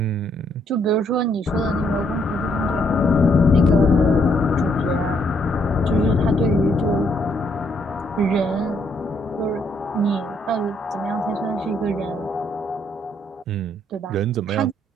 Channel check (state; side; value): normal; both; correlation 0.71